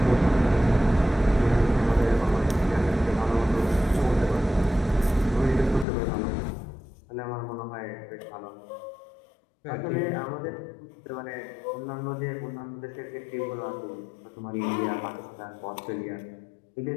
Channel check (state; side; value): drops out; right; at 5.9 s